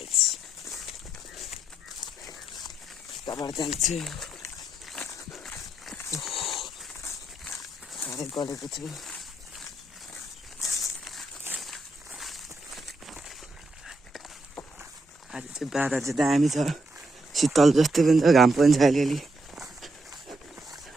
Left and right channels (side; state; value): both; normal; correlation 0.80